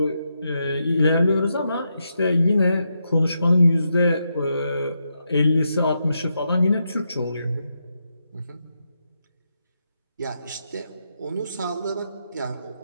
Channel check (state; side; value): inverted; both; correlation -0.84